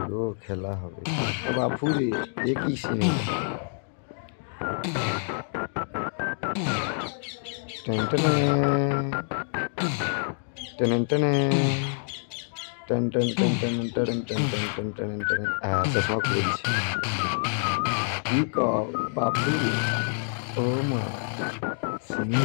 গো, খেলা হবে। বাপুরে এ কি সিনেমা! টেন টেনে টেন টেনে ten ten ten ten ten ten ten ten ten ten. চশমা খুলে দিচ্ছে। কি কও বাপুরে, ও মা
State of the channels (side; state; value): right; silent; digital silence